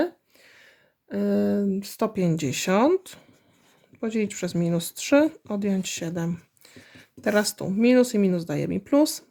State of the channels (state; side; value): identical; both; correlation 1.00